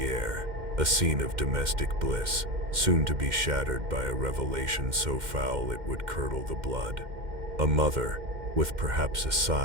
air, a scene of domestic bliss, soon to be shattered by a revelation so foul it would curdle the blood. A mother, with perhaps a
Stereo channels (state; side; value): late; left; 2.1 ms